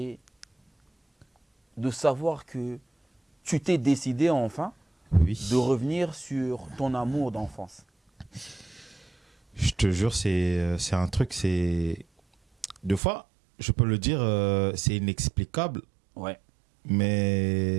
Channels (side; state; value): left; drops out; at 13.0 s